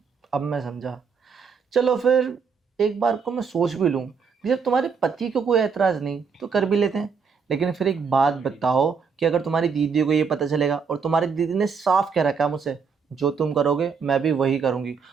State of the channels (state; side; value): quieter; left; 5.8 dB